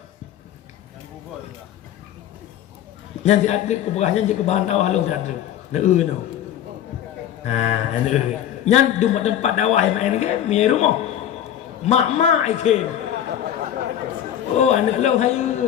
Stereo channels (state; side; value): quieter; right; 10.7 dB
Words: yang diadrik keberahnya jika bahan dakwah lu diadrik no. Nah, nyan di tempat dakwah yang main game, mi rumah. Mak ikem. Oh, anak lau